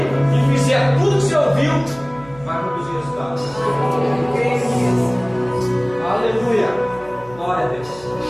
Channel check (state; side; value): noise; right; hum, 22 dB below the sound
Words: e fizer tudo que você ouviu, vai produzir resultado. Aleluia. Glória a Deus.